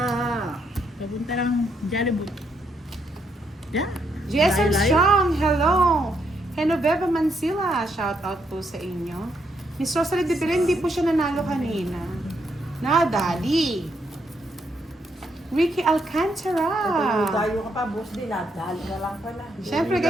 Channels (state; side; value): normal; both; correlation 0.76